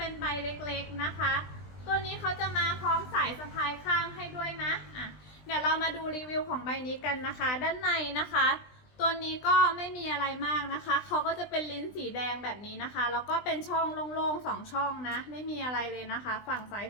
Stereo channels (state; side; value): late; right; 20 ms